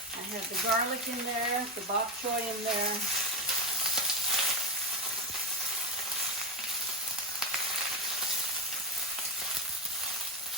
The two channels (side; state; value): both; normal; correlation 0.13